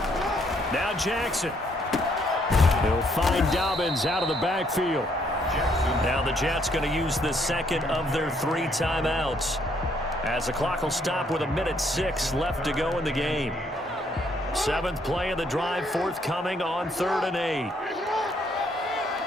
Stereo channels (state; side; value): normal; both; correlation 0.69